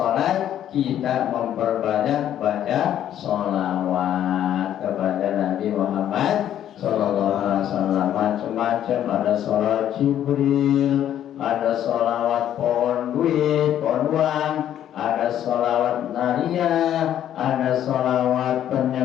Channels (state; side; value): quieter; right; 10.9 dB